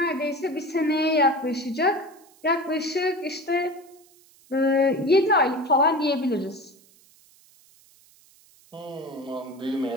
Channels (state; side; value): noise; right; hiss, 28 dB below the sound